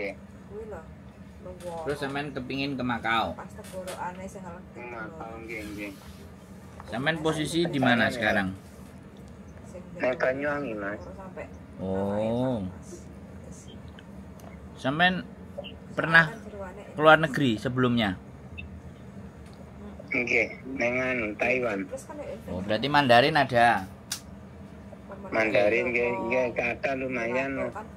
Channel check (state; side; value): identical; both; correlation 1.00